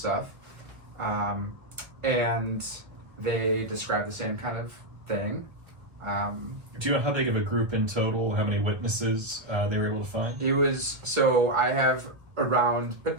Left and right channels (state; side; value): late; left; 1.5 ms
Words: And they described the same kind of thing. Do you know how big of a group in total, how many witnesses they were able to find? It was, so I have around,